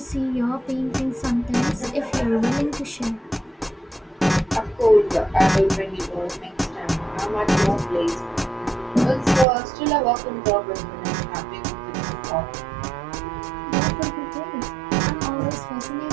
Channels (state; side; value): drops out; left; at 9.5 s